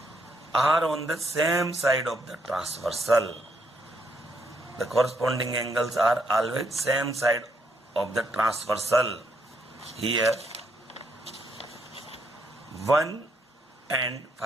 are on the same side of the transversal. The corresponding angles are always same side of the transversal. Here 1 and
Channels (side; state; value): both; normal; correlation 0.75